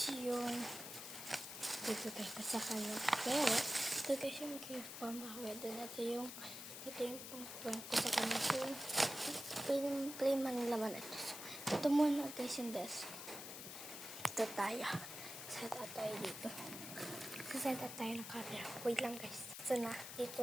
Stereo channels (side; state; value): left; noise; hiss, 9 dB below the sound